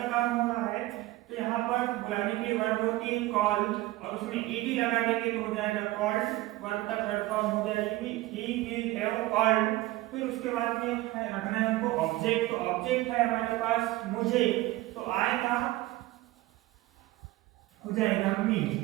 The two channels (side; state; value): left; quieter; 17.9 dB